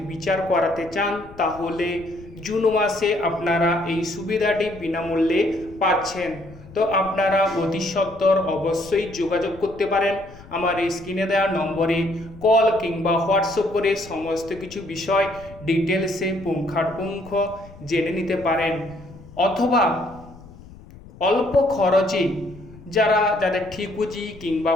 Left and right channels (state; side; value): noise; left; rumble, 20 dB below the sound